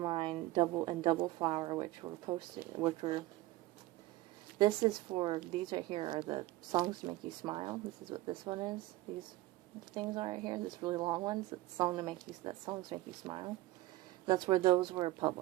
Double Flower, which were this is for, these right here are the Songs to Make You Smile. This is what this one is. These things are right here, this really long ones, Songs to Make You Smile. That's where those were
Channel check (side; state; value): left; quieter; 17.8 dB